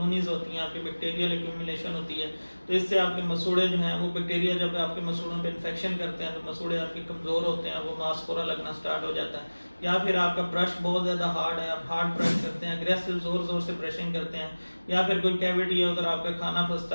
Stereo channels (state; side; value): inverted; both; correlation -1.00